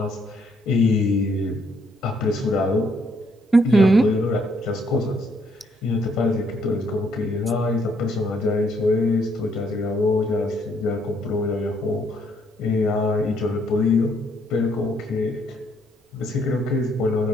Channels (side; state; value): both; normal; correlation 0.70